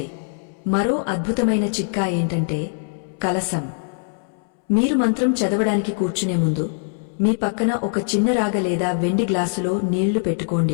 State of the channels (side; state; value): right; silent; 64 dB below the other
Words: మరో అద్భుతమైన చిట్కా ఏంటంటే కలసం. మీరు మంత్రం చదవడానికి కూర్చునే ముందు మీ పక్కన ఒక చిన్న రాగ లేదా వెండి గ్లాసులో నీళ్లు